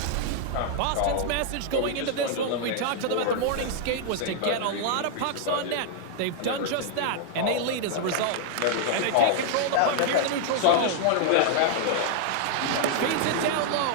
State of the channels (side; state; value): both; different; correlation 0.00